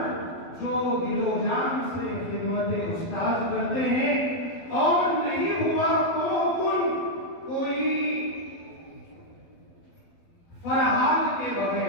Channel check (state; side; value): late; right; 12 ms